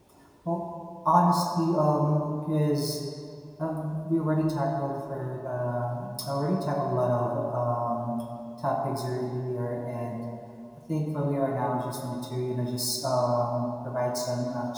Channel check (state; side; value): identical; both; correlation 1.00